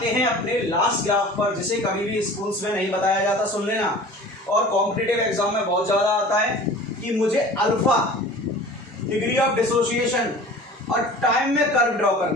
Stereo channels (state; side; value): normal; both; correlation 0.42